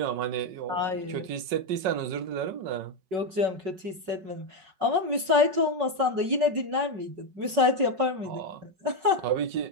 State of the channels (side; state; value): left; late; 5.4 ms